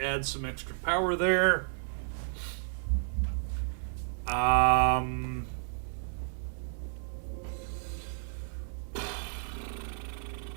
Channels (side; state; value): left; silent; 56 dB below the other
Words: add some extra power there.